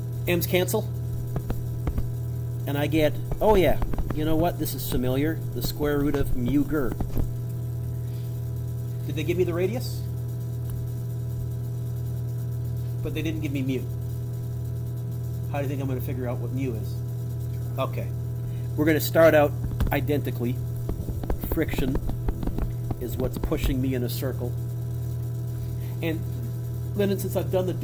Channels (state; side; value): identical; both; correlation 1.00